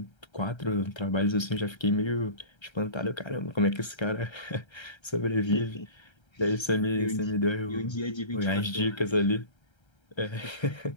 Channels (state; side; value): late; right; 1.3 ms